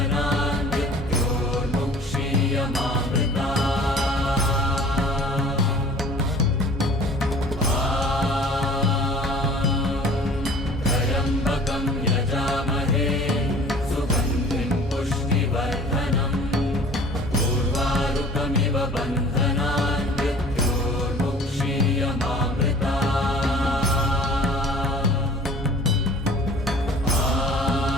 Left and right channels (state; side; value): normal; both; correlation 0.48